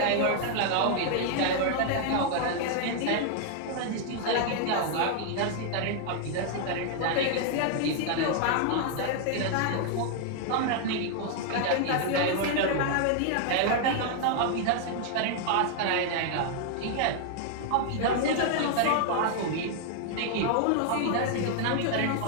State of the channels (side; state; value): both; different; correlation 0.00